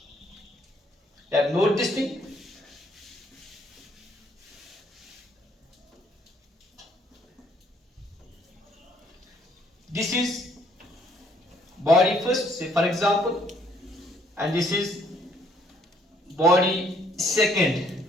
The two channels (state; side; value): normal; both; correlation 0.65